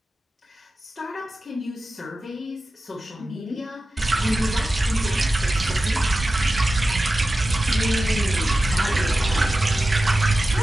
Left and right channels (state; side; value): normal; both; correlation 0.94